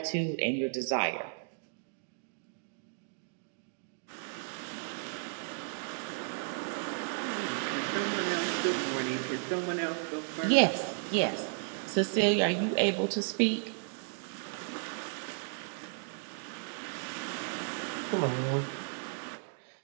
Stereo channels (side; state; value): left; silent; 55 dB below the other